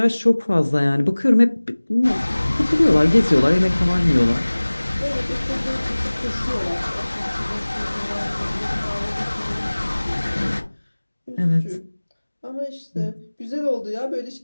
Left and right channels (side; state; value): both; inverted; correlation -1.00